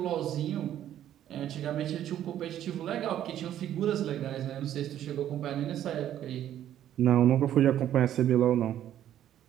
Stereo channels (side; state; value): left; quieter; 11.4 dB